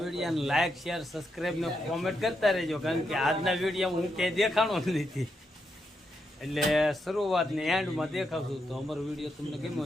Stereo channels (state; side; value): normal; both; correlation 0.82